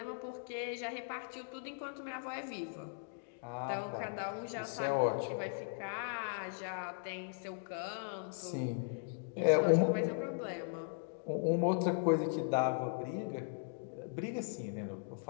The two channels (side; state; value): right; silent; digital silence